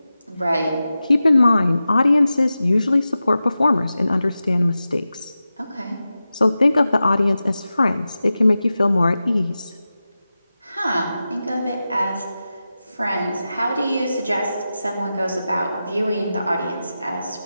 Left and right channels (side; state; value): both; inverted; correlation -0.93